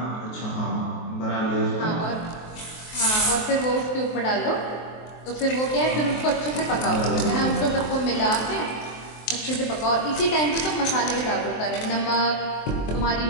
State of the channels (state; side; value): late; right; 23 ms